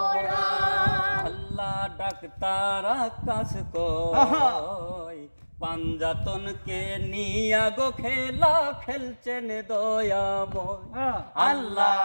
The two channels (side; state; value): both; inverted; correlation -1.00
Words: আল্লাহ ডাক্তার আকাশ কই পাঞ্জাতনকে নিয়া গো খেলা খেলছেন দয়াময়। আল্লাহ